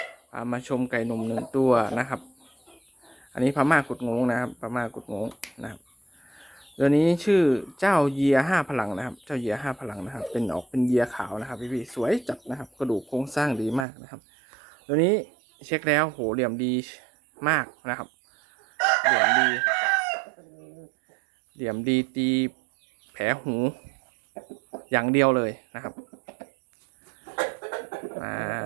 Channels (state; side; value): drops out; left; at 13.9 s